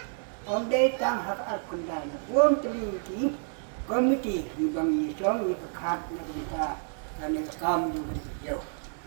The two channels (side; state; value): left; silent; 58 dB below the other